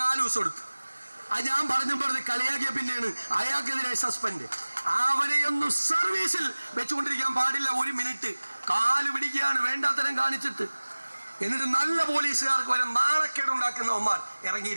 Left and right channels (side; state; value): both; inverted; correlation -1.00